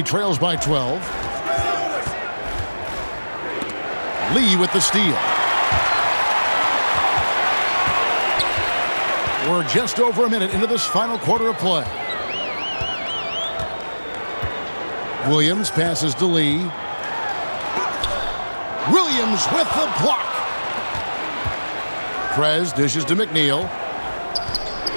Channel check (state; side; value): inverted; both; correlation -1.00